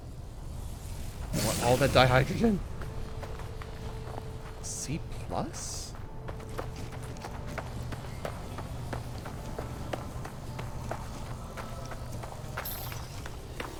I want all that dihydrogen. C plus?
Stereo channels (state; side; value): identical; both; correlation 1.00